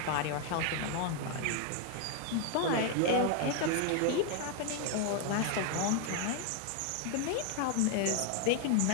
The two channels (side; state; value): both; different; correlation 0.01